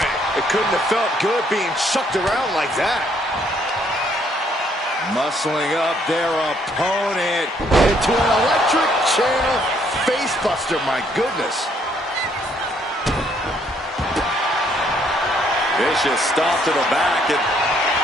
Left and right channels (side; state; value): both; normal; correlation 0.68